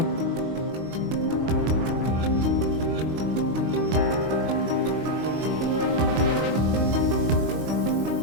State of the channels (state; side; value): late; left; 25 ms